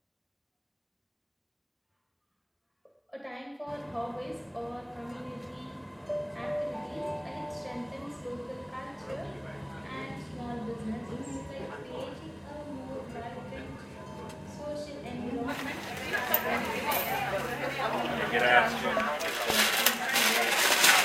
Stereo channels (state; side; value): identical; both; correlation 1.00